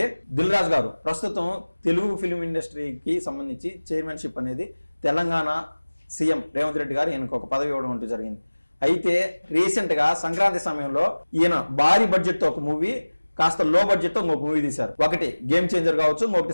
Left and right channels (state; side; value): inverted; both; correlation -1.00